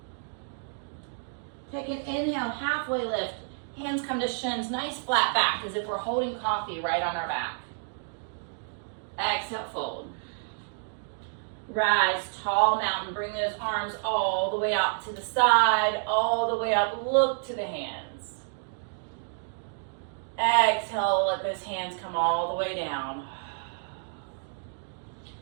Take an inhale, halfway lift. Hands come to shins, nice flat back as if we're holding coffee right on our back. Exhale, fold. Rise, tall mountain. Bring those arms all the way out to the side, all the way up. Look to the hands. Exhale, let those hands come all the way down.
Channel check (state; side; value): silent; left; digital silence